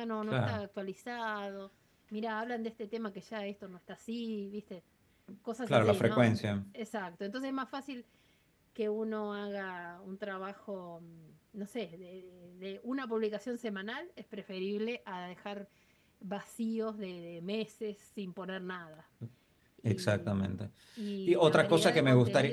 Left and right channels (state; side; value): identical; both; correlation 1.00